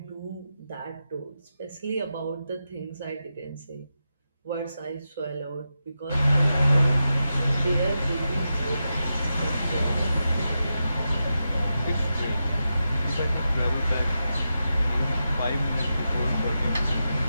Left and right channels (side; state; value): both; inverted; correlation -0.89